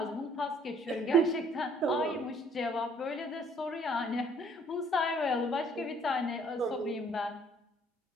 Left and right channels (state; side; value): normal; both; correlation 0.60